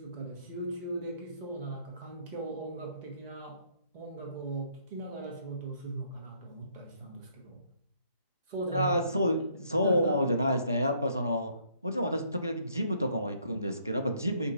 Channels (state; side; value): inverted; both; correlation -0.67